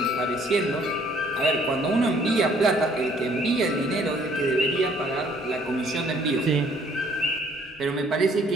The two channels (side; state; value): both; normal; correlation 0.61